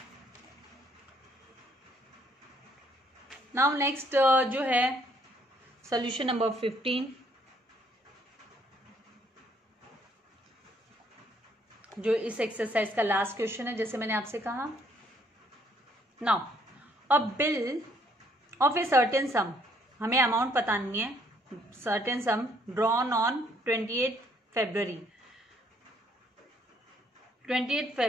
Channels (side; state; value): both; normal; correlation 0.67